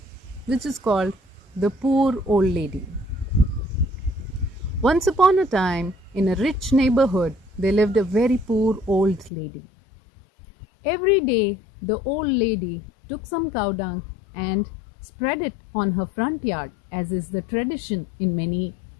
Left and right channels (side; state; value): right; drops out; at 9.3 s